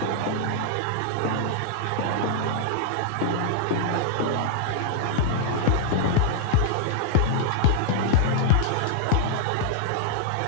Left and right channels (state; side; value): different; both; correlation -0.01